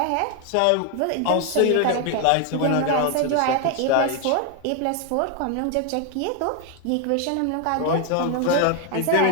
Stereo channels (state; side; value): different; both; correlation 0.01